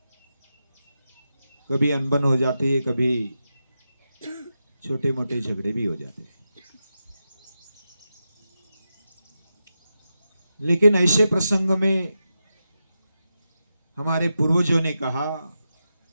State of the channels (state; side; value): inverted; both; correlation -0.89